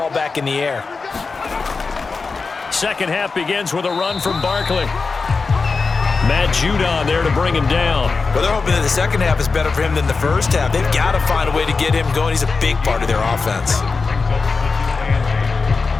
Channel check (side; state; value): right; quieter; 4.4 dB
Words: back in the air. Second half begins with a run from Barkley. Matt Judon there to bring him down. Well, they're hoping that the second half is better for him than the first half. They've got to find a way to get him going. He's a big part of their offense.